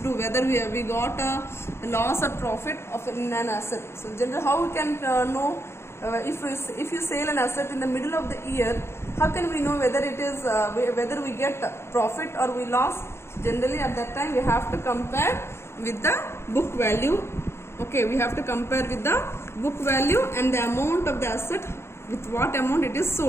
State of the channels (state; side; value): late; right; 0.12 ms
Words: do whether we got a loss or profit of in an asset. So generally how we can know if you sell an asset in the middle of the year, how can we know whether it is whether we get profit or we lost? Generally at that time we have to compare with the book value. Okay, we have to compare with the book value and the amount of the asset with what amount it is